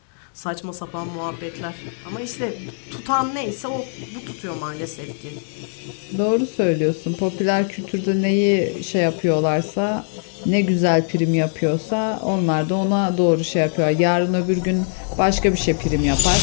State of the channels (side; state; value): right; silent; digital silence